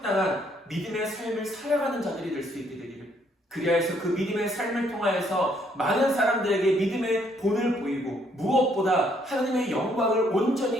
믿음의 삶을 살아가는 자들이 될 수 있게 되기를, 그리하여 그 믿음의 삶을 통하여서 많은 사람들에게 믿음의 본을 보이고 무엇보다 하나님의 영광을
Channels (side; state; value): both; normal; correlation 0.68